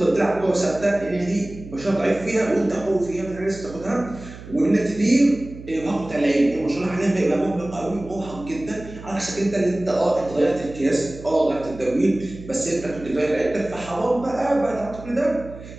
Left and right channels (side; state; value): right; noise; hum, 15 dB below the sound